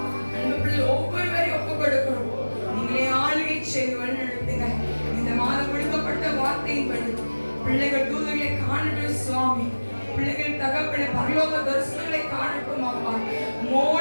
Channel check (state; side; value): inverted; both; correlation -1.00